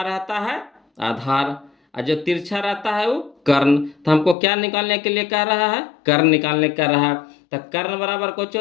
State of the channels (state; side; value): drops out; right; at 4.4 s